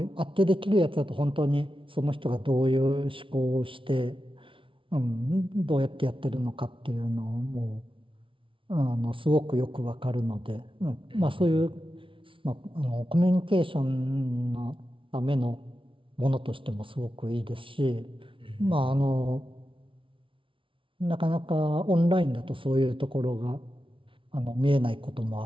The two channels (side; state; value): left; late; 0.25 ms